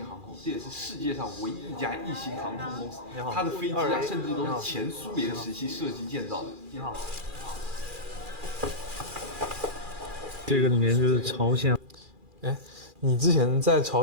航空，这也是世界上唯一一家异星航空公司。它的飞机啊，甚至都是前苏联时期设计建造的。你好。这个里面就是朝鲜。哎，你之前在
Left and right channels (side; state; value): left; late; 2.4 ms